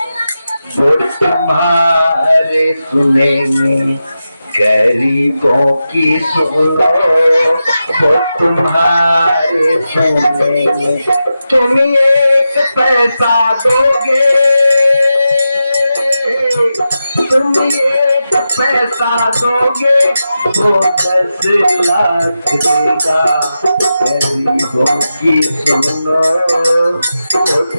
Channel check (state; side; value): inverted; both; correlation -0.90